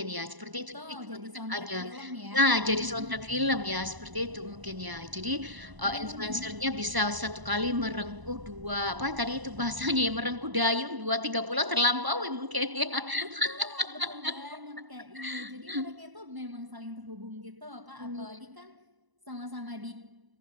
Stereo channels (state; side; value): late; left; 1.0 ms